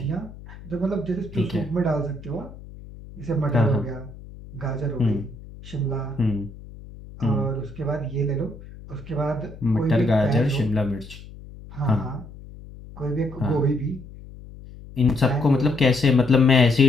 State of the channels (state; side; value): noise; left; hum, 17 dB below the sound